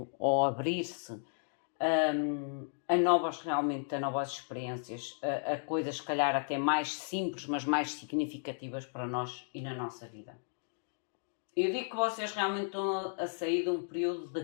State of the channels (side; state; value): right; silent; digital silence